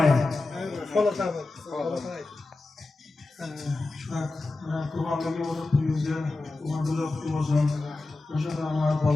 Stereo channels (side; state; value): right; quieter; 3.2 dB